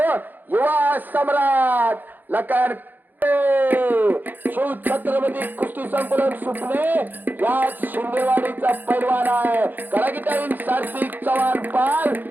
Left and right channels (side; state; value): left; late; 0.087 ms